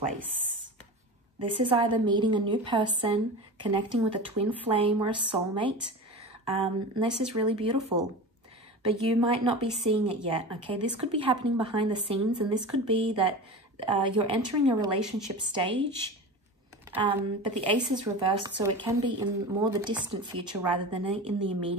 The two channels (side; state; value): both; normal; correlation 0.30